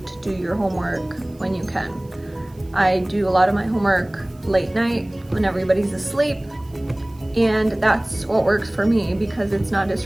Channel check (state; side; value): noise; right; hiss, 29 dB below the sound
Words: do your homework when you can. I do a lot of my homework late night when everybody's asleep, and that's what works for me because it's not